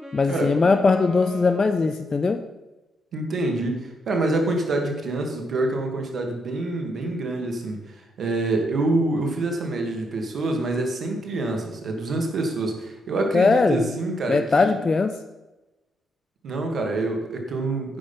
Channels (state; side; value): normal; both; correlation 0.79